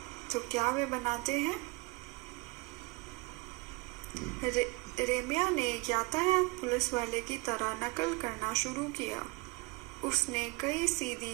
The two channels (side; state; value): left; quieter; 25.6 dB